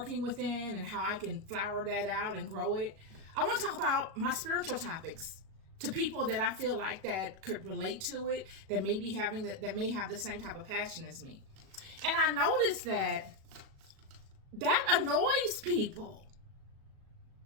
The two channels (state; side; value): late; left; 37 ms